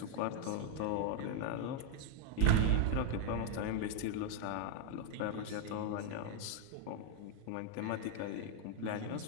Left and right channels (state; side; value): different; both; correlation 0.00